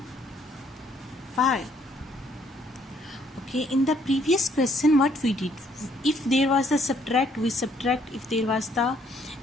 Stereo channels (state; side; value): normal; both; correlation 0.66